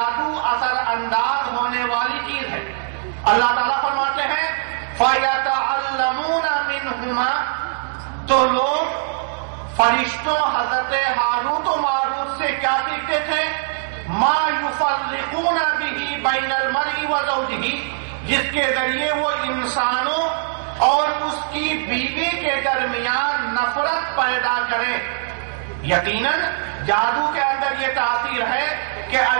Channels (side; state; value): left; silent; 62 dB below the other